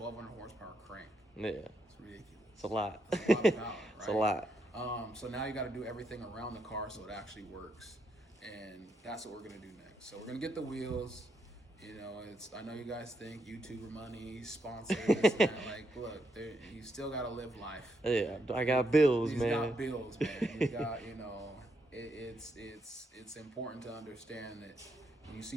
horsepower crank. Yeah. It's ridiculous. It's a lot. It's a lot of power, right? It's a lot. So now you got to do everything around the car so it actually works, and that's what we're gonna do next. So we're gonna get the wheels. You know, I know you guys think YouTuber money, sponsors, this and that. Like, look, you still gotta live life. Yeah, I got bills, He's man. got bills, man. He's got, you know, it's important to understand that when you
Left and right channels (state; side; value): normal; both; correlation 0.79